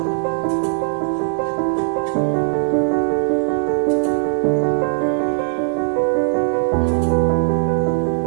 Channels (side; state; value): left; silent; 65 dB below the other